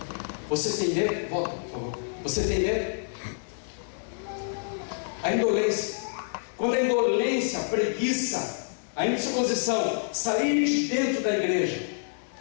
Você tem medo? Volta, por favor. Você tem medo? A indolência. Quando a indolência, a preguiça, a indisposição sair de dentro da igreja,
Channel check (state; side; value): silent; right; digital silence